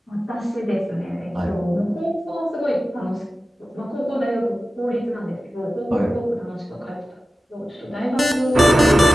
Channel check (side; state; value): both; normal; correlation 0.95